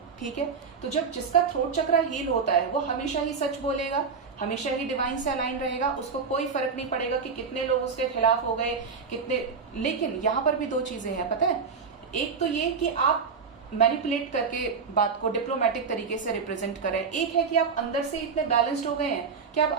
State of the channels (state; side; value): quieter; left; 5.5 dB